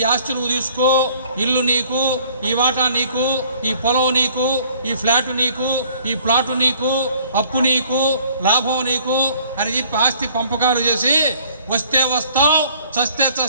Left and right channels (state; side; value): inverted; both; correlation -0.56